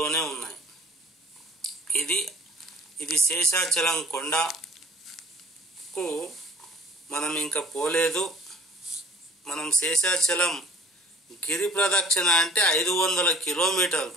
ఉన్నాయి. ఇది శేషాచలం కొండకు మనం ఇంకా పోలేదు. మనం శేషాచలం గిరి ప్రదక్షిణ అంటే 500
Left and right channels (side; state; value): both; normal; correlation 0.50